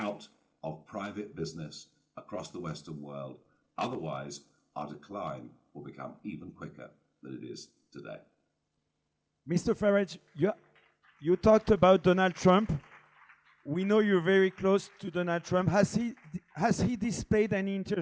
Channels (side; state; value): both; identical; correlation 1.00